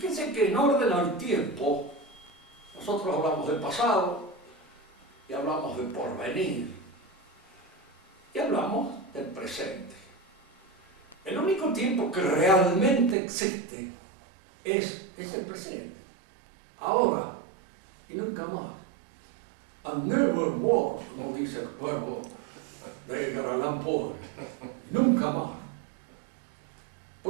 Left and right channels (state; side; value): drops out; left; at 13.2 s